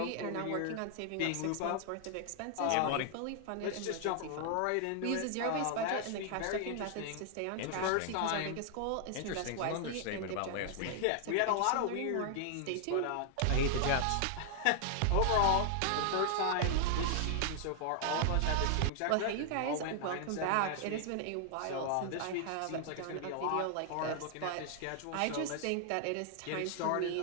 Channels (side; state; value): both; different; correlation 0.00